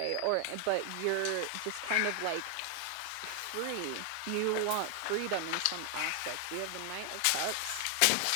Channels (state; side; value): different; both; correlation 0.00